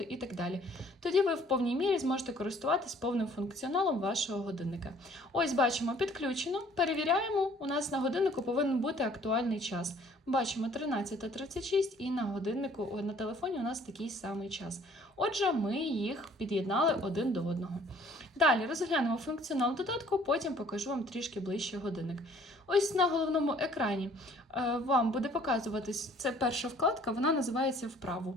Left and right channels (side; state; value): both; normal; correlation 0.57